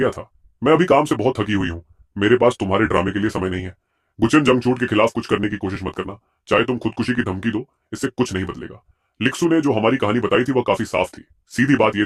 था? मैं अभी काम से बहुत थकी हुई हूँ, मेरे पास तुम्हारे ड्रामे के लिए समय नहीं है। गुचन, जंगछूट के खिलाफ कुछ करने की कोशिश मत करना, चाहे तुम खुदकुशी की धमकी दो, इससे कुछ नहीं बदलेगा। लिक्सू ने जो हमारी कहानी बताई थी वह काफी साफ थी। सीधी बात यह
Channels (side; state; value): both; identical; correlation 1.00